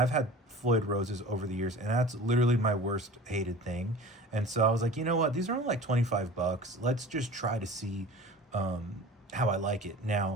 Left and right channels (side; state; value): both; normal; correlation 0.40